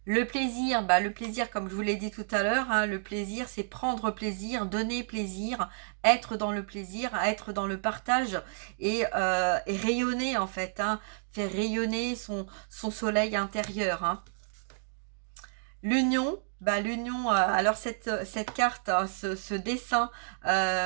Le plaisir, comme je vous l'ai dit tout à l'heure, hein, le plaisir, c'est prendre plaisir, donner plaisir, être dans le plaisir, être dans le partage et rayonner en fait, hein, faire rayonner son soleil intérieur, hein. L'union, bah, l'union, alors cette carte, ce dessin,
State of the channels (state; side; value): silent; left; digital silence